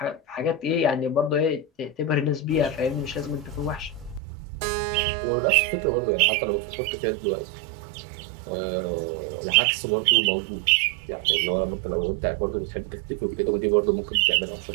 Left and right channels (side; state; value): left; drops out; at 4.2 s